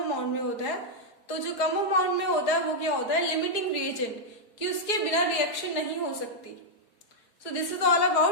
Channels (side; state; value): right; late; 4.8 ms